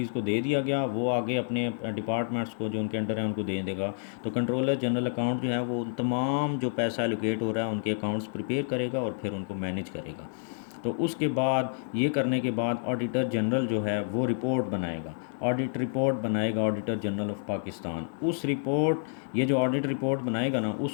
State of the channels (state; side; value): silent; right; digital silence